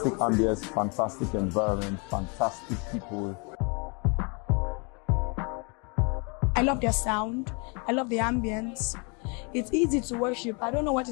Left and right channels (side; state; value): right; quieter; 33.3 dB